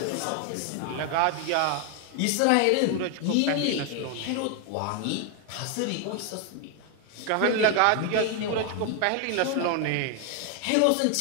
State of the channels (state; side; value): different; both; correlation 0.01